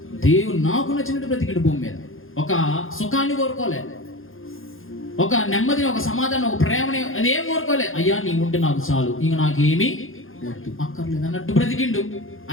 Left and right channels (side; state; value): right; late; 0.60 ms